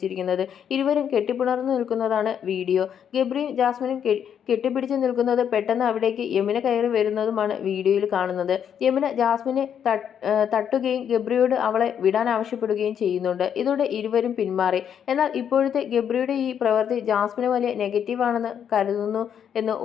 ഇരുവരും കെട്ടിപ്പിണർന്നു നിൽക്കുന്നതാണ് വീഡിയോ. ഗബ്രിയും ജാസ്മിനും കെട്ടിപ്പിടിച്ച് നിൽക്കുന്നത് പെട്ടെന്ന് അവിടേക്ക് യമുന കയറി വരുന്നതുമാണ് വീഡിയോയിൽ കാണുന്നത്. യമുന ജാസ്മിനെ തട്ടുകയും ഗബ്രിയോട് അവളെ വിടാൻ ആവശ്യപ്പെടുകയും ചെയ്യുന്നുണ്ട്. ഇതോടെ ഇരുവരും പിന്മാറി. എന്നാൽ ഇപ്പോഴത്തെ ഗബ്രിയുടെ ഈ പ്രവൃത്തി ജാസ്മിന് വലിയ നെഗറ്റീവാണെന്ന് കരുതുന്നു എന്ന്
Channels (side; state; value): right; quieter; 8.5 dB